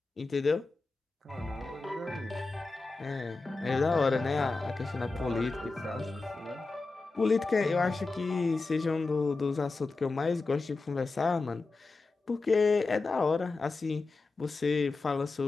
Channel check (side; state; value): right; quieter; 3.7 dB